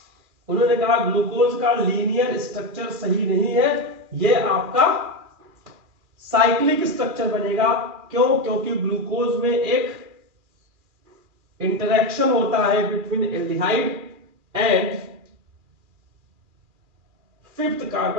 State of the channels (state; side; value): late; left; 2.4 ms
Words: उन्होंने कहा ग्लूकोज का लीनियर स्ट्रक्चर सही नहीं है, ये आपका साइक्लिक स्ट्रक्चर बनेगा। क्यों? क्योंकि ग्लूकोज में एक इंटरेक्शन होता है between aldehyde and 5th